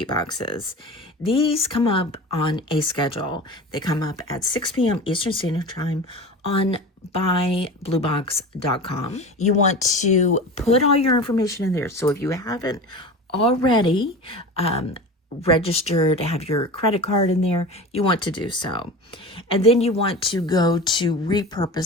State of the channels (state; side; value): normal; both; correlation 0.32